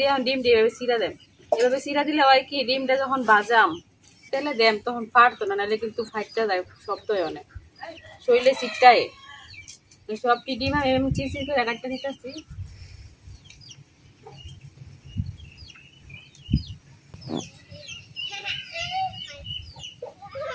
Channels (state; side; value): identical; both; correlation 1.00